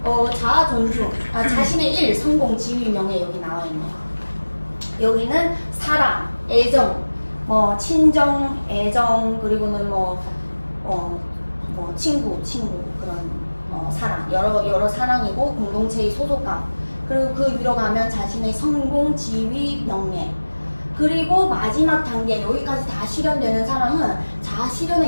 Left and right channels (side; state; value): both; inverted; correlation -1.00